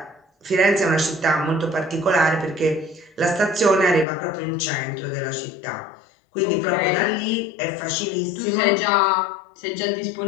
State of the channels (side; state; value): right; drops out; at 4.0 s